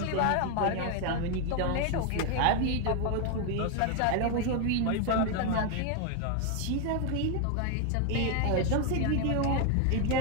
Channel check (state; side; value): different; both; correlation 0.01